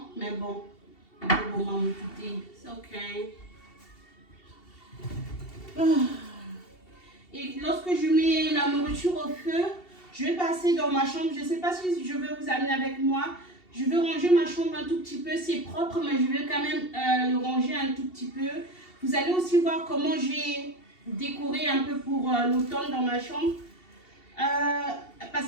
mais bon. C'est ok. Et lorsque je mets la nourriture au feu, je vais passer dans ma chambre. Je ne sais pas si je vais vous amener avec moi. Je vais ranger ma chambre un tout petit peu. C'est propre, mais je vais quand même le ranger un tout petit peu. Vous allez aussi voir comment j'ai décoré un peu pour l'automne dans ma chambre.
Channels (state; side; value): late; right; 2.7 ms